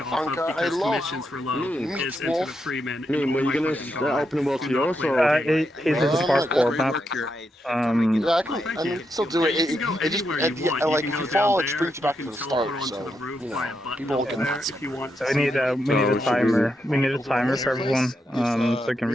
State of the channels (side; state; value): both; normal; correlation 0.83